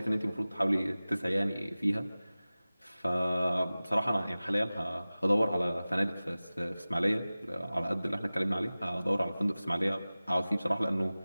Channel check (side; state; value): both; inverted; correlation -0.97